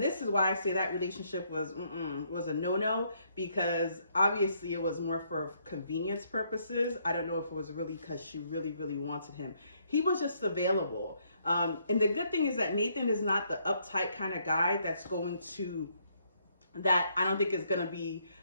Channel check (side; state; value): both; inverted; correlation -0.71